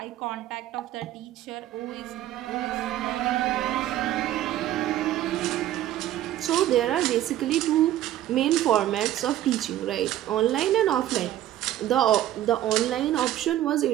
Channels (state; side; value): quieter; left; 13.1 dB